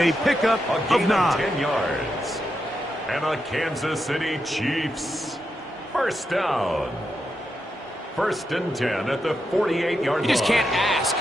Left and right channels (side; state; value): both; normal; correlation 0.85